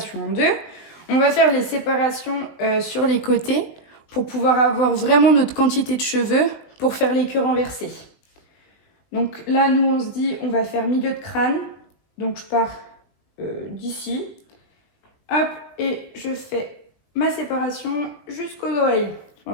en deux. On va faire les séparations sur les côtés pour pouvoir avoir vraiment notre quantité de cheveux pour faire les queues renversées. Donc là, nous, on se dit, on va faire milieu de crâne. Donc je pars d'ici. Hop, et je fais ma séparation jusqu'aux oreilles.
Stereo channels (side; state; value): right; late; 20 ms